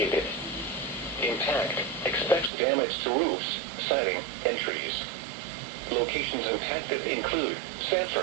Impact, expects damage to roofs, siding, and trees. Locations impacted include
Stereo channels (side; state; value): left; drops out; at 2.5 s